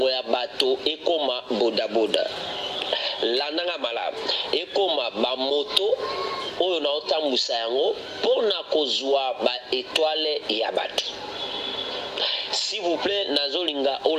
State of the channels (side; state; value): both; identical; correlation 1.00